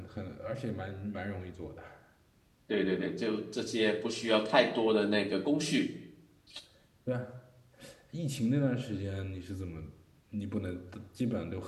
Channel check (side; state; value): both; identical; correlation 1.00